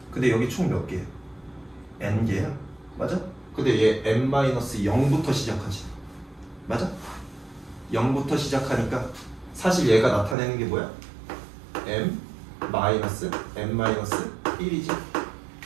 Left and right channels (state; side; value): drops out; left; at 10.4 s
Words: 근데 여기 총 몇 개야? n개야. 맞아? 근데 얘 n-0부터 시작하지. 맞아? 0부터 시작하니까 사실 얘가 나타내는 게 뭐야? m-n-1이지.